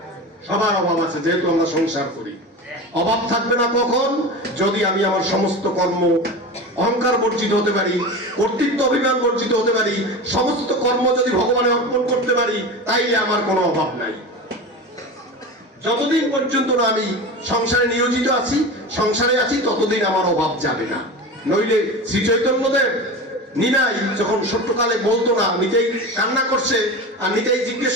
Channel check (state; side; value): normal; both; correlation 0.28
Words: সবার অভাব আছে, যেহেতু আমরা সংসার করি। অভাব থাকবে না কখন? যদি আমি আমার সমস্ত কর্ম অহংকার বর্জিত হতে পারি, কর্তৃত্ব অভিমান বর্জিত হতে পারি, সমস্ত কর্ম যদি ভগবানে অর্পণ করতে পারি, তাইলে আমার কোনো অভাব নাই। যতদিন পর্যন্ত না আমি সংসারে নিয়োজিত আছি, সংসারে আছি, ততদিন আমার অভাব যাবে না। নইলে শ্রী চৈতন্যদেব নিনাই যখন ছোট্টকালে বলতো না, নিজেই কান্না করছে, আর নিজেই জিজ্ঞেস